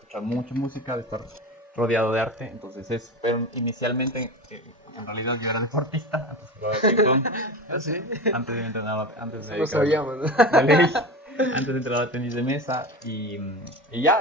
mucha música, de estar rodeado de arte. Entonces pero inicialmente, en realidad yo era deportista, antes jugaba ping pong, ¿Ah, sí? antes de entrenar, antes de Eso no dedicarme sabíamos, ¿no? de ley. Antes entrenaba tenis de mesa y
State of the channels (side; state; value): both; normal; correlation 0.28